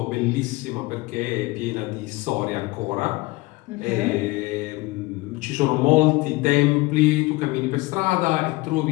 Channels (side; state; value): right; quieter; 21.8 dB